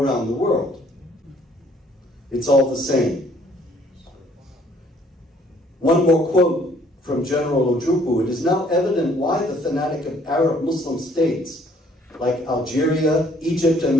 the world. It's all the same. One more quote from General Ojukwu. It is now evident why the fanatic of Arab Muslim states like Algeria, Egypt, and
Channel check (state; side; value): normal; both; correlation 0.61